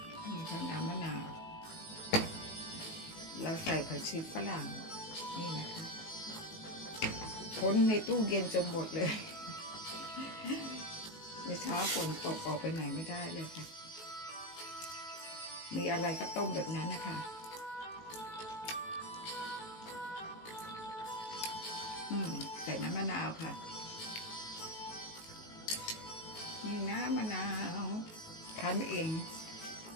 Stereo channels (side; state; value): right; late; 18 ms